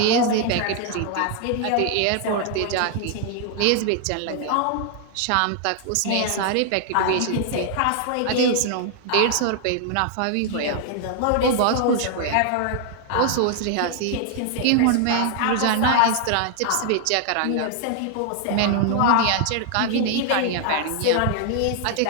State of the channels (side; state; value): both; different; correlation 0.00